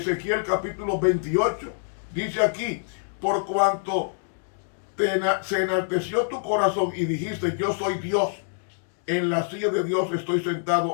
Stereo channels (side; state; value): right; silent; digital silence